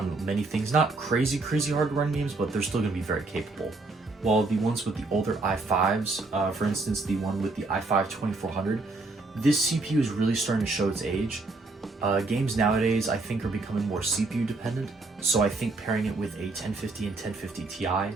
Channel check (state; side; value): quieter; left; 3.4 dB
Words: many things. Not crazy hard to run games, but they're still going to be very capable. While the ones with the older i5s, for instance, the one with the i5 2400, this CPU is really starting to show its age. Games nowadays, I think, are becoming more CPU dependent, so I think pairing it with a 1050 and 1050 Ti